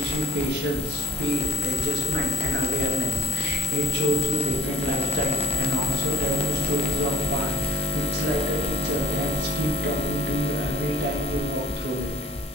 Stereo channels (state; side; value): normal; both; correlation 0.54